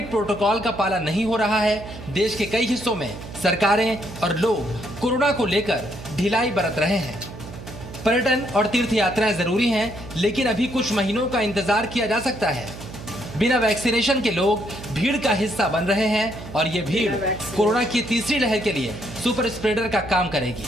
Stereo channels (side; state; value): right; noise; hum, 13 dB below the sound